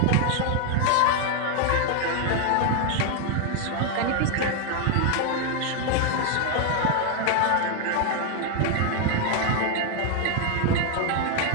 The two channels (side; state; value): both; different; correlation 0.00